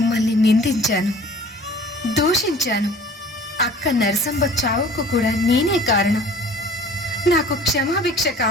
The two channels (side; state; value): both; normal; correlation 0.48